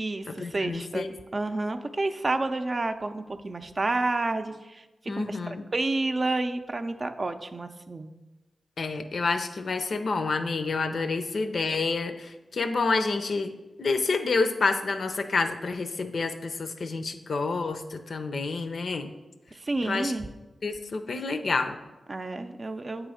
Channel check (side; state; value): both; normal; correlation 0.90